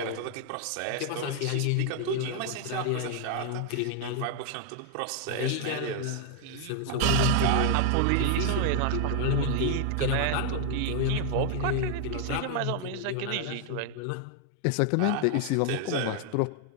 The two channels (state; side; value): different; both; correlation 0.00